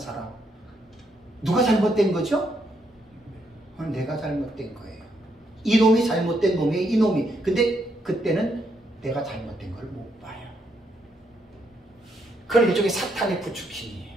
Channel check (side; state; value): both; normal; correlation 0.76